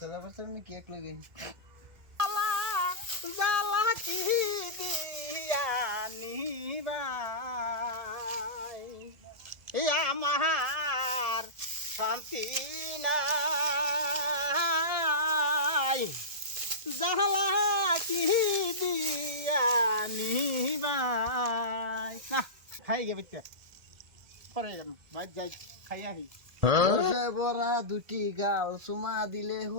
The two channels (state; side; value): late; left; 1.7 ms